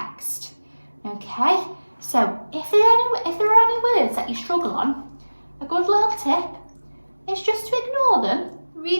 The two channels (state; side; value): inverted; both; correlation -1.00